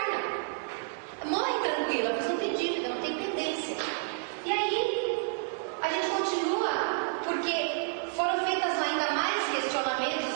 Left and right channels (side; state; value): left; silent; digital silence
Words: Morre tranquila, mas não tem dívida, não tem pendência. E aí a gente continua, porque foram feitas ainda mais